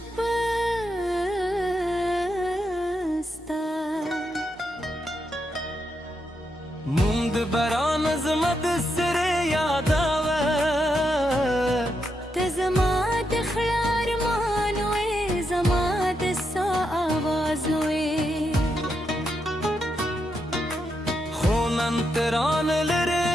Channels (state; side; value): normal; both; correlation 0.83